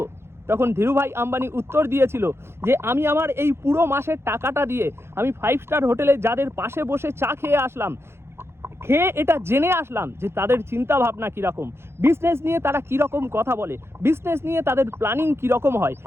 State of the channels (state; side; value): late; left; 0.12 ms